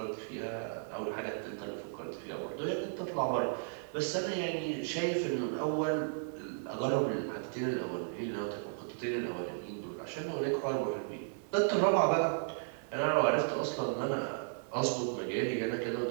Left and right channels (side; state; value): left; silent; digital silence